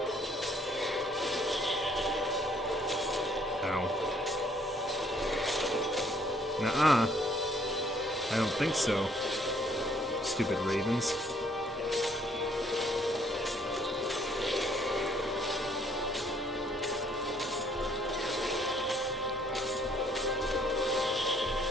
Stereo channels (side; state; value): both; normal; correlation 0.64